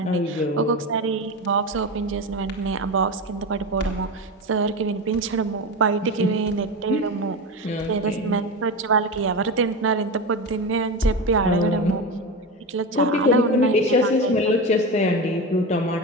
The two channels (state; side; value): normal; both; correlation 0.21